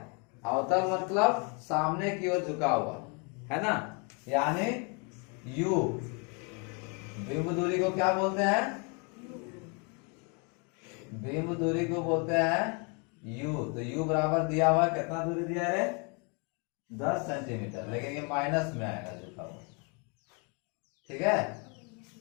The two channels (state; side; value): quieter; right; 34.6 dB